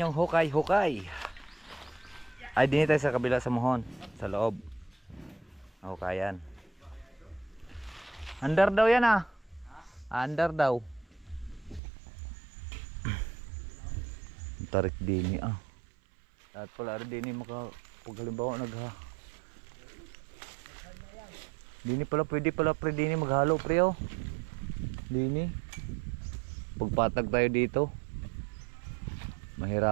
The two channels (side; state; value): left; drops out; at 11.8 s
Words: hukay, hukay. Ay, din tayo sa kabila sa muhon. Sa loob. Hukayan. Andar daw yan, ah. Under daw. Tarik dini ah. At pala rin dini pag halimbawa dini pala pwede pala pre dini maghalo pre oh. Dini. Pagpatag tayo dito.